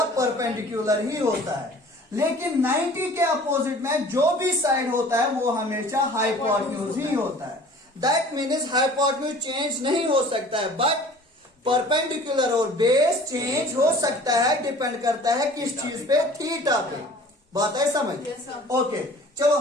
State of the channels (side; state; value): both; normal; correlation 0.47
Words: परपेंडिकुलर ही होता है। लेकिन 90 के अपोजिट में जो भी साइड होता है वो हमेशा हाइपोटेन्यूज ही होता है। दैट मीन्स हाइपोटेन्यूज चेंज नहीं हो सकता है, बट परपेंडिकुलर और बेस चेंज हो सकता है। डिपेंड करता है किस चीज पे, थीटा पे। बात है समझ? ओके, चलो